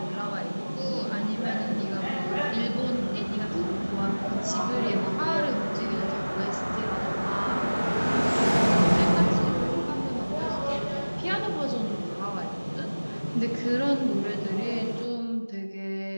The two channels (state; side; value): inverted; both; correlation -1.00